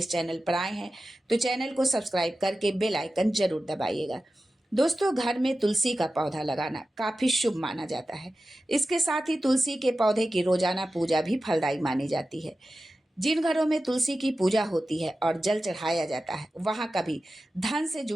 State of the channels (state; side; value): normal; both; correlation 0.94